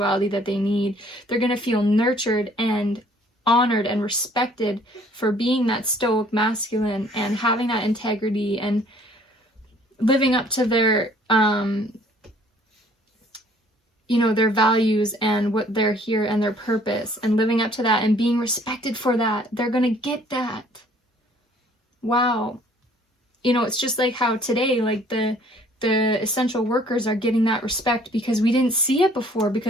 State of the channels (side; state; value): both; normal; correlation 0.58